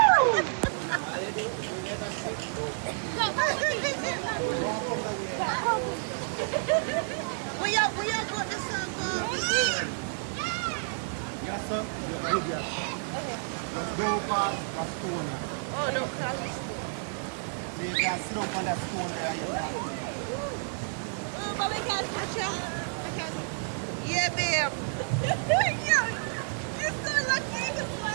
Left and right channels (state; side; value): silent; left; digital silence